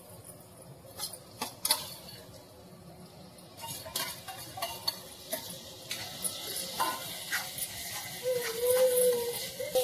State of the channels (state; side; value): identical; both; correlation 1.00